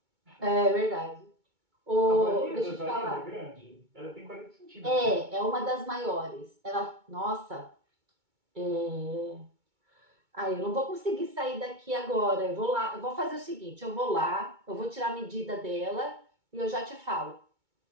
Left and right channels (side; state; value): left; late; 2.2 ms